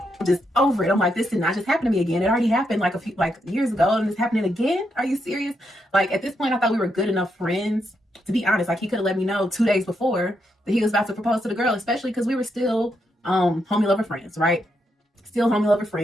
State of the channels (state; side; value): normal; both; correlation 0.81